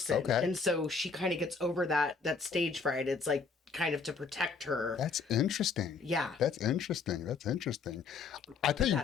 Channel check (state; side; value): quieter; right; 4.9 dB